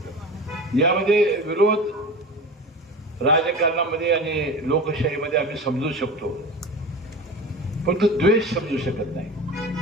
यामध्ये विरोध राजकारणामध्ये आणि लोकशाहीमध्ये आम्ही समजू शकतो, पण तो द्वेष समजू शकत नाही.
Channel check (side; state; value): both; normal; correlation 0.32